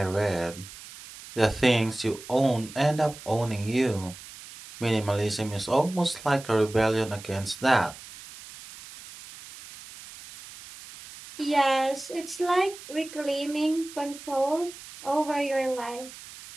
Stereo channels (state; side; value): noise; right; hiss, 16 dB below the sound